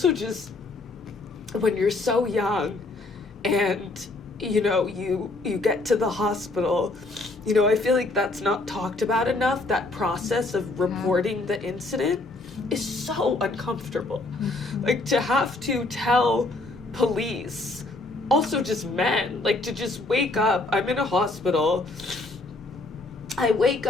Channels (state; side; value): quieter; right; 3.1 dB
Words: just, when you're so young and you get to the hospital, I feel like that's not talked about enough. That process of reporting the incident is so uncomfortable. Like, to have to tell police, also just men, like, to just wake up, I'm in a hospital, I wake